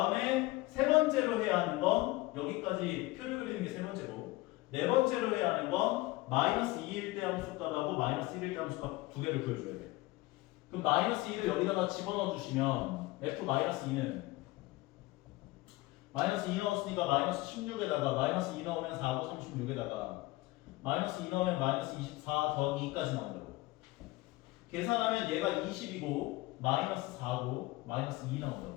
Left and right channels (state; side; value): quieter; right; 20.2 dB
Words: 세 번째로 해야 하는 건 여기까지 표를 그리는 게 세 번째고 네 번째로 해야 하는 건 마이너스 2일 때 함수값하고 마이너스 1일 때 함수값 두 개를 구해줘야 돼. 그럼 마이너스 2를 여기다가 집어넣어 주시면 f 마이너스 2는 마이너스 2 넣었으니까 마이너스 16에다가 마이너스 2 넣으면 4고 36에다가 마이너스 2 넣으면 마이너스 24 더하기 2까지 나온다고. 계산하면 얘가 20이고 마이너스 4고 마이너스 2